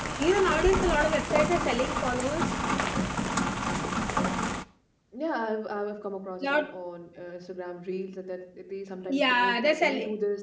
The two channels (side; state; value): both; identical; correlation 1.00